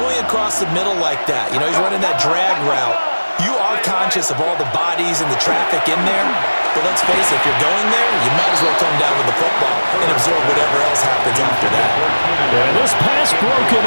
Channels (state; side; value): inverted; both; correlation -1.00